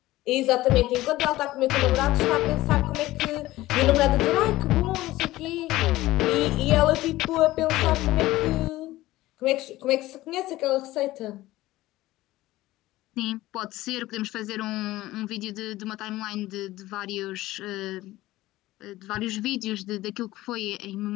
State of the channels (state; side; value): quieter; right; 17.0 dB